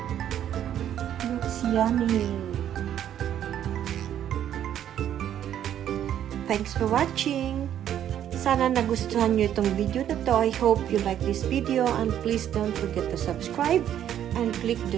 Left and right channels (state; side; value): quieter; left; 10.5 dB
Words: Looks yummy. Thanks for watching. Sana nagustuhan nyo itong video na to. I hope you like this video and please don't forget to subscribe and click